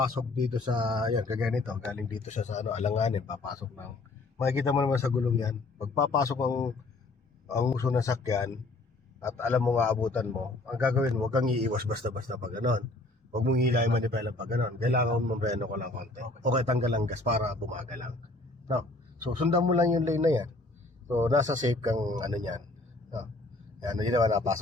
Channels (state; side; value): quieter; right; 3.0 dB